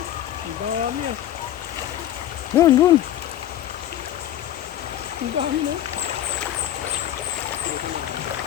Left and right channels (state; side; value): quieter; right; 12.2 dB